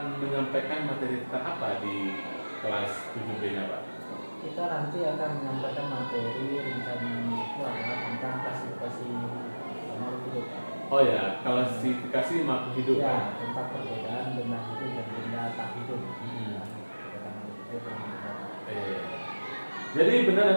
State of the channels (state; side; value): inverted; both; correlation -1.00